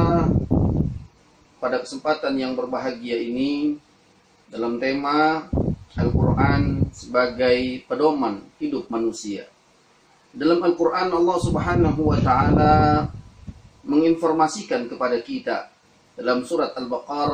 pada kesempatan yang berbahagia ini dalam tema Al-Quran sebagai pedoman hidup manusia. Dalam Al-Quran Allah Subhanahu wa Ta'ala menginformasikan kepada kita dalam surat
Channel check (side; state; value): both; identical; correlation 1.00